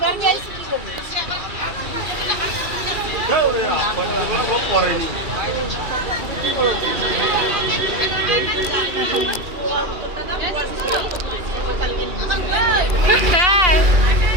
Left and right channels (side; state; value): left; late; 2.8 ms